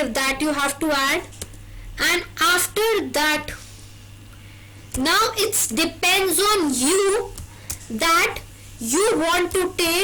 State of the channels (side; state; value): both; identical; correlation 1.00